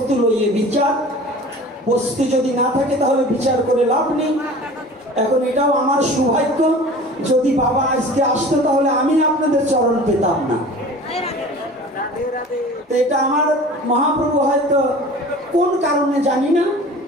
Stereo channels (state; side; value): normal; both; correlation 0.41